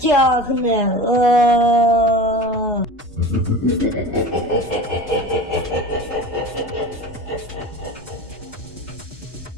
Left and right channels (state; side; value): normal; both; correlation 0.33